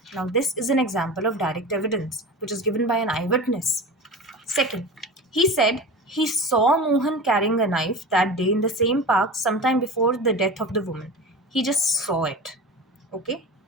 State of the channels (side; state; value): both; normal; correlation 0.31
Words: Now, this is an example of direct evidence which is given by an eyewitness. Second, he said he saw Mohan carrying a knife that day in the same park sometime before the death of the woman. He just saw it. Okay?